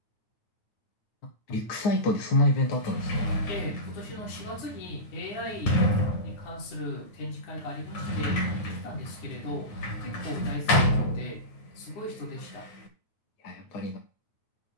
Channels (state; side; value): late; right; 9.4 ms